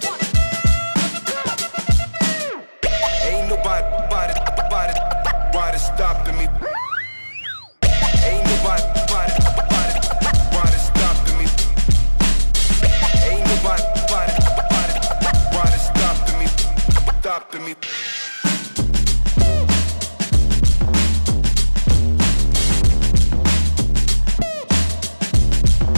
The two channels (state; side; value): inverted; both; correlation -1.00